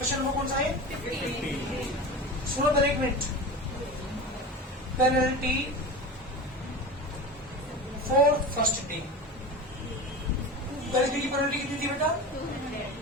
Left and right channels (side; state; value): both; normal; correlation 0.29